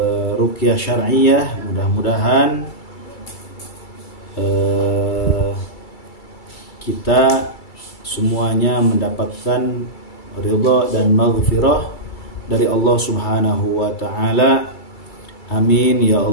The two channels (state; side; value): late; right; 2.3 ms